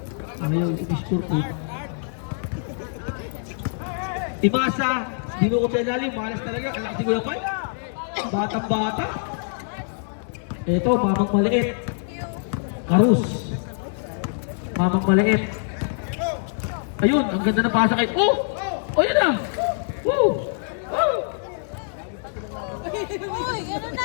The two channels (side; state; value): right; silent; digital silence